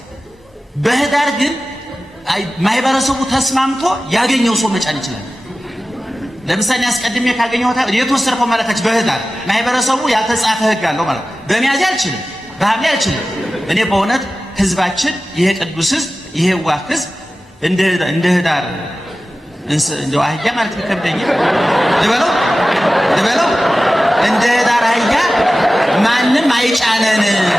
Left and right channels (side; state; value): both; normal; correlation 0.96